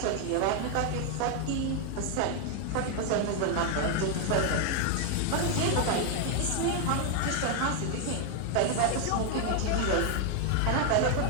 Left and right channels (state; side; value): different; both; correlation 0.00